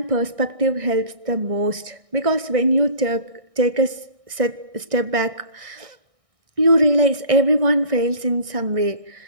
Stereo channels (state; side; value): late; left; 1.6 ms